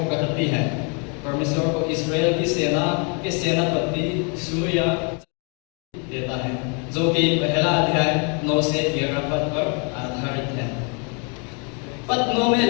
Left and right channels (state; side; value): quieter; right; 36.2 dB